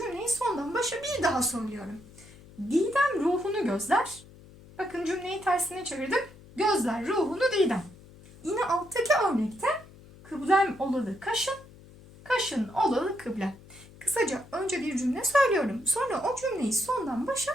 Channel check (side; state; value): left; noise; hum, 22 dB below the sound